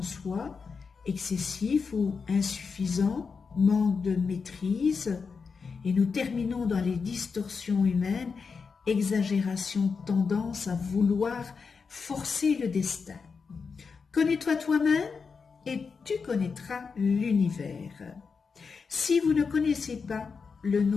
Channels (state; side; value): quieter; right; 5.3 dB